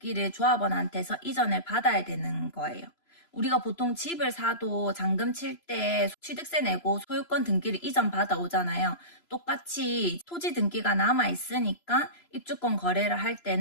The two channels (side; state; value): right; late; 3.0 ms